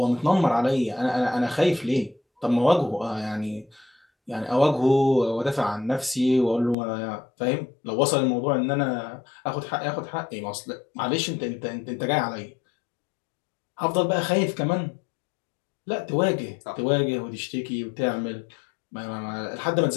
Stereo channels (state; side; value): drops out; right; at 6.8 s